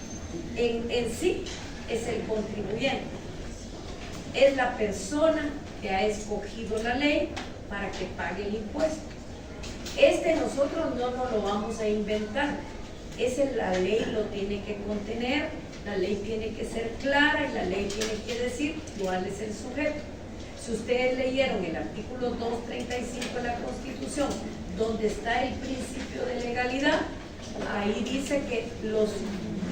en sí es el contribuyente. Es la persona que ha escogido la ley para que pague el impuesto. Nosotros no nos lo vamos a inventar. La ley lo tiene que contener, la ley tiene que ser clara y la ley tiene que decir cuál es el sujeto. Si ustedes leyeron el artículo 235 de la Constitución, donde está el principio de legalidad, ahí dice que el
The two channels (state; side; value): identical; both; correlation 1.00